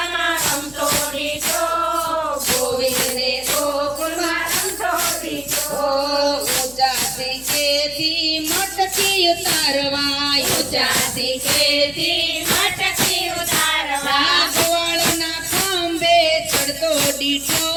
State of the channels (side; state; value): left; noise; hum, 21 dB below the sound